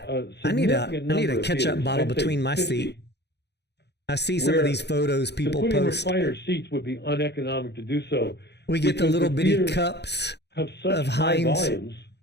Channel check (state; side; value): late; right; 0.49 ms